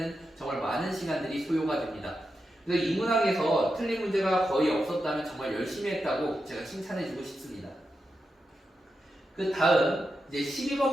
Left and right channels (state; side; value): normal; both; correlation 0.88